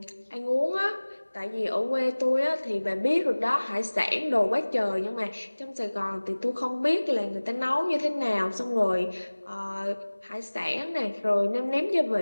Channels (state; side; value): inverted; both; correlation -1.00